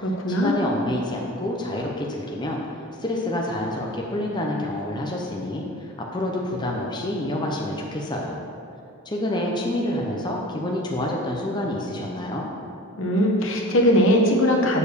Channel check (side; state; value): both; normal; correlation 0.39